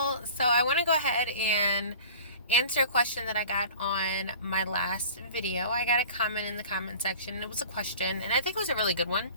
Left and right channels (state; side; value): inverted; both; correlation -0.42